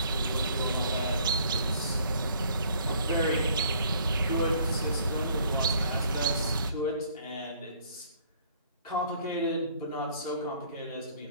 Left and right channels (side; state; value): both; inverted; correlation -0.59